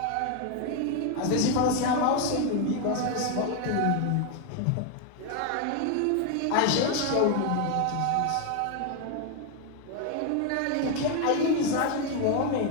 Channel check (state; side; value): different; both; correlation 0.01